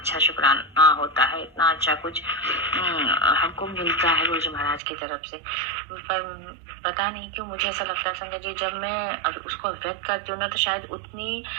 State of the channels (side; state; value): left; drops out; at 4.8 s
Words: शुक्राना होता है, इतना अच्छा कुछ हमको मिलता है गुरु जी महाराज की तरफ से। पर पता नहीं क्यों मुझे ऐसा लगता है संगत जी, जब मैं उसको व्यक्त करती हूँ ना तो शायद उतनी